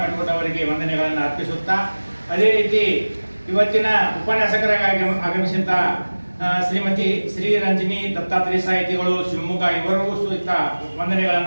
ಮೆಟ್ಕೋಟ್ ಅವರಿಗೆ ವಂದನೆಗಳನ್ನು ಅರ್ಪಿಸುತ್ತಾ, ಅದೇ ರೀತಿ ಇವತ್ತಿನ ಉಪನ್ಯಾಸಕರಾಗಿ ಆಗಮಿಸಿದಂಥ ಶ್ರೀಮತಿ ಶ್ರೀ ರಂಜಿನಿ ದತ್ತಾತ್ರೇಯ ಸಾಹಿತಿಗಳು ಶಿವಮೊಗ್ಗ ಇವರಿಗೂ ಸಹಿತ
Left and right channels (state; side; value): inverted; both; correlation -1.00